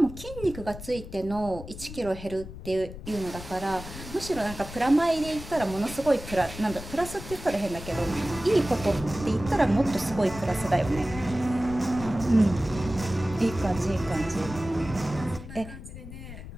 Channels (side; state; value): left; noise; rumble, 12 dB below the sound